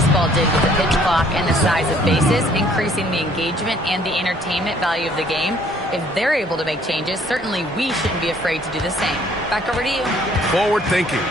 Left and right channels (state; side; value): normal; both; correlation 0.61